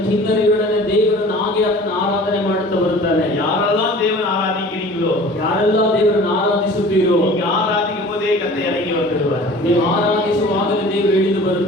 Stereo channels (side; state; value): both; normal; correlation 0.44